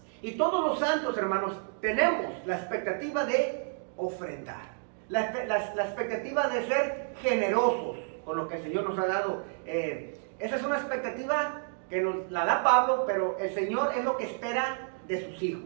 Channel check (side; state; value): left; silent; 58 dB below the other